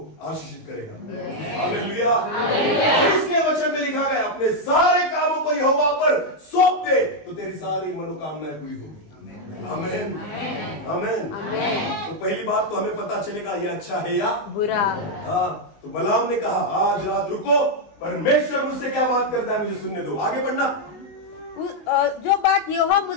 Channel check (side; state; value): right; late; 19 ms